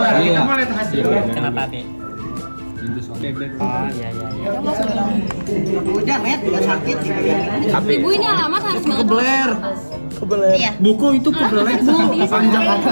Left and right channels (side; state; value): both; inverted; correlation -1.00